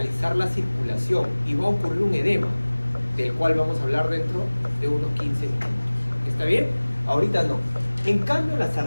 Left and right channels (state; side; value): inverted; both; correlation -1.00